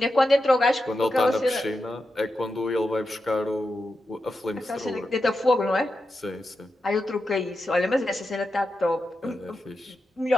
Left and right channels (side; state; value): both; normal; correlation 0.89